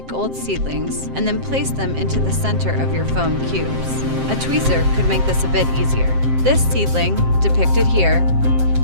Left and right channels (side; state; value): left; late; 7.6 ms